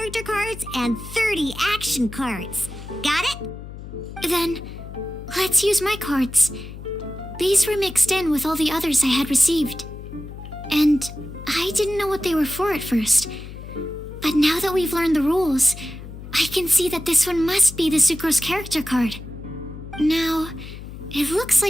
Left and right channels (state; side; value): noise; left; hum, 12 dB below the sound